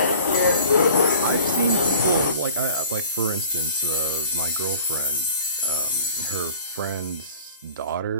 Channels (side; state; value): both; inverted; correlation -0.48